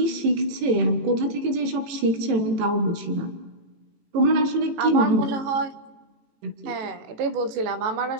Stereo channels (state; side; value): late; left; 18 ms